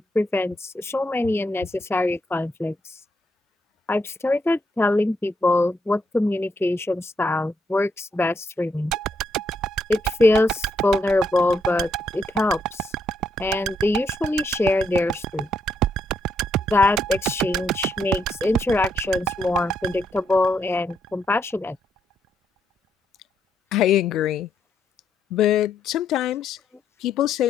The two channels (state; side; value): normal; both; correlation 0.76